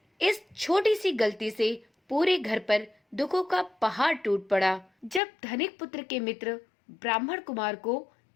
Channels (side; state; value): right; drops out; at 5.2 s